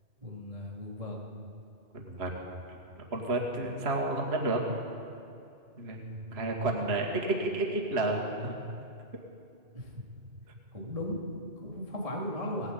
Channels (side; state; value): left; late; 3.0 ms